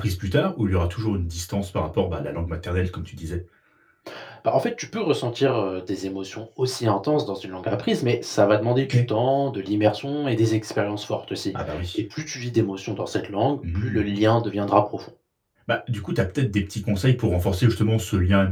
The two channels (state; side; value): identical; both; correlation 1.00